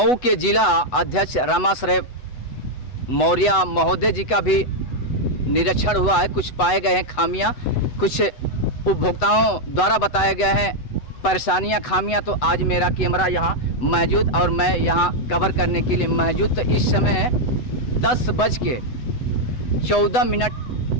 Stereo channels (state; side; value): late; right; 8.0 ms